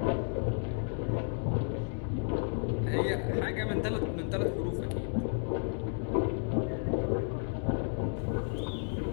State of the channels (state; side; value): silent; right; 56 dB below the other